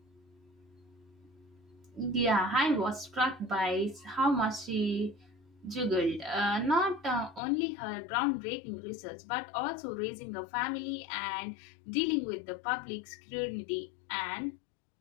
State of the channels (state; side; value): drops out; right; at 7.4 s